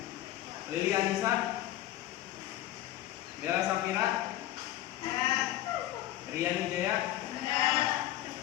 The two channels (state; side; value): quieter; right; 14.3 dB